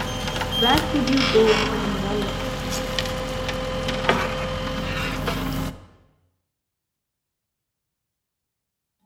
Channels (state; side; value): identical; both; correlation 1.00